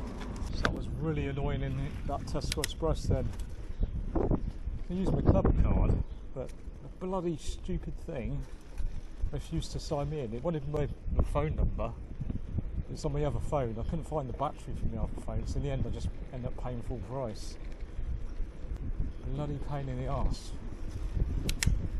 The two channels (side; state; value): both; identical; correlation 1.00